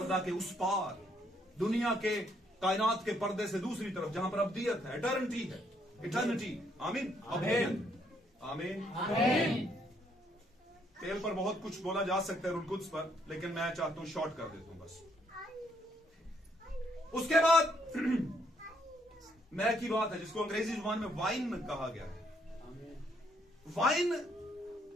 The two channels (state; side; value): normal; both; correlation 0.71